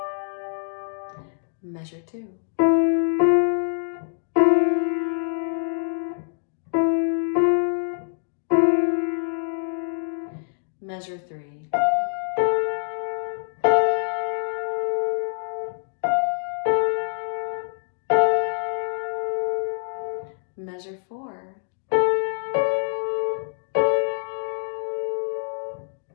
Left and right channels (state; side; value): silent; right; digital silence